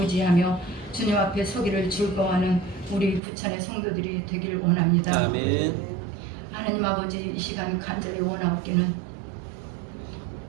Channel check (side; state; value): left; drops out; at 3.2 s